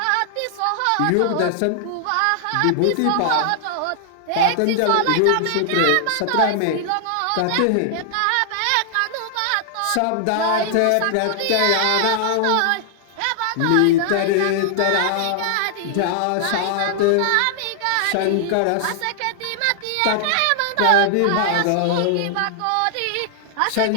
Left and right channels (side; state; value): both; different; correlation -0.01